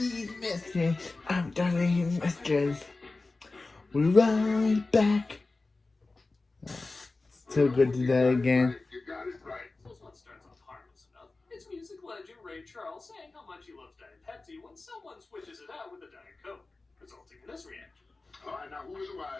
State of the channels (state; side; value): quieter; right; 3.4 dB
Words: after these messages, we're right back. So good to that again. You got it right. This one starts off harmless enough. It's music legend Ray Charles saying how much he loves Diet Pepsi when someone switches it out with a Diet Coke, resulting in this reaction. All right, now who is the